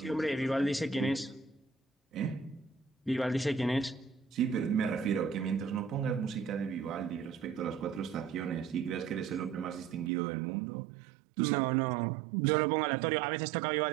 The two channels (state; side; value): drops out; left; at 10.1 s